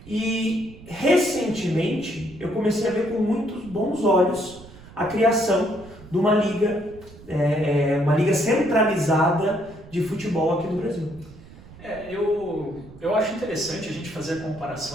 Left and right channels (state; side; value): noise; right; rumble, 19 dB below the sound